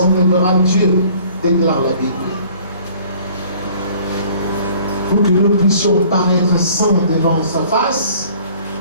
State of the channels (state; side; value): inverted; both; correlation -0.53